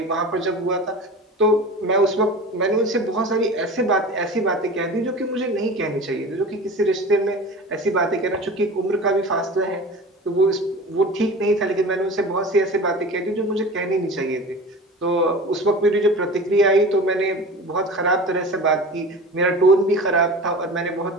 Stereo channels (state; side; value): normal; both; correlation 0.35